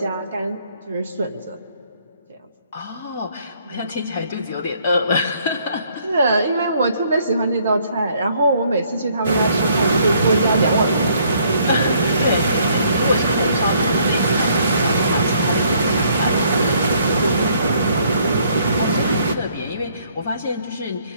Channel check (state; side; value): inverted; both; correlation -0.65